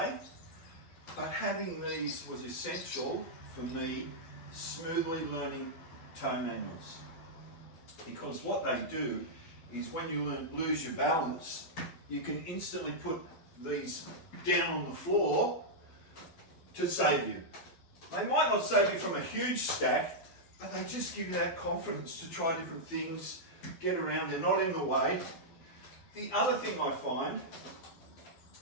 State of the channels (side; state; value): right; late; 12 ms